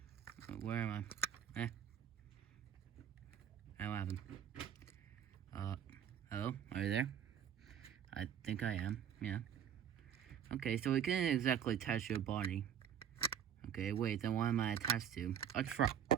Where am I? What happened? Hello? Are you there? I think I am, yeah. Okay, so we can't exactly attach your body. Okay, wait, then what am I attached to? A truck.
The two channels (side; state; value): left; quieter; 9.0 dB